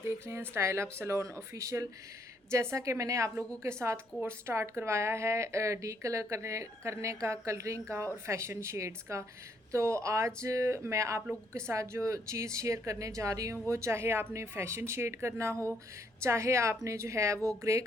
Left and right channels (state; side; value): normal; both; correlation 0.71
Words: देख रहे हैं स्टाइल अप सैलून ऑफिशियल। जैसा कि मैंने आप लोगों के साथ कोर्स स्टार्ट करवाया है डी कलर करने का, कलरिंग का और फैशन शेड्स का, तो आज मैं आप लोगों के साथ जो चीज़ शेयर करने जा रही हूँ वो चाहे आपने फैशन शेड करना हो, चाहे आपने जो है वो ग्रे